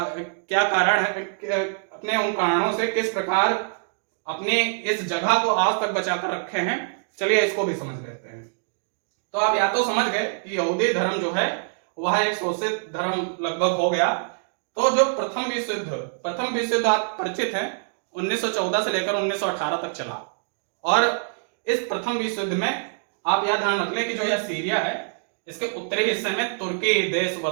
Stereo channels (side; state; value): left; silent; digital silence